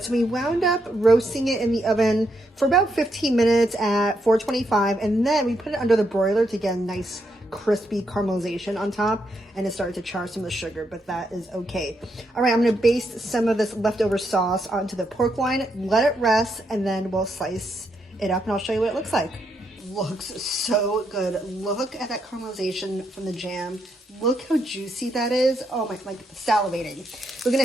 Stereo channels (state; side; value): normal; both; correlation 0.79